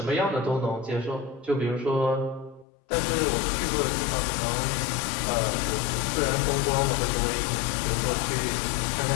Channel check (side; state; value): right; drops out; at 2.7 s